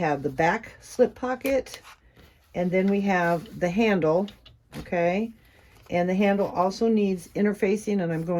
the back slip pocket, and then we have the handle, okay? And the handle also needs interfacing, and I'm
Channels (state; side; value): identical; both; correlation 1.00